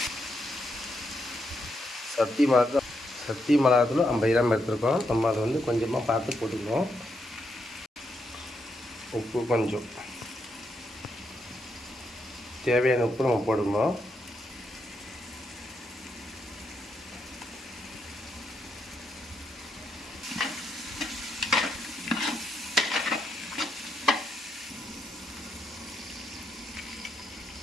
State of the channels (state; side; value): normal; both; correlation 0.80